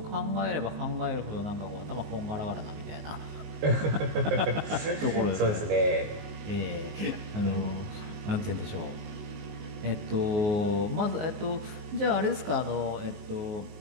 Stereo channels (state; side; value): late; left; 19 ms